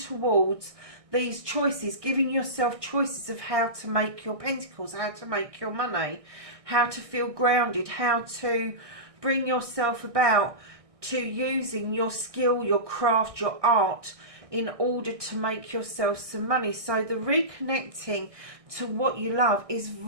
these choices, giving yourself choices of how to make your Pentacles, how to make your money, how to feel grounded, how to bring yourself about to using your skill, your craft, your art in order to make yourself some money. So the reconnecting to what you love is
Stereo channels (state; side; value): late; left; 1.6 ms